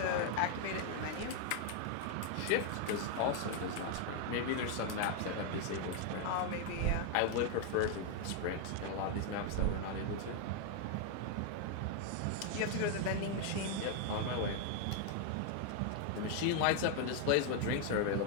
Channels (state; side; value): different; both; correlation 0.01